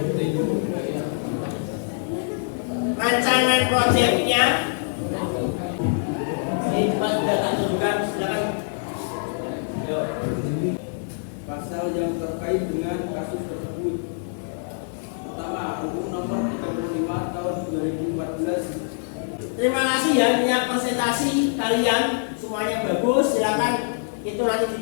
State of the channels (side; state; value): right; silent; 62 dB below the other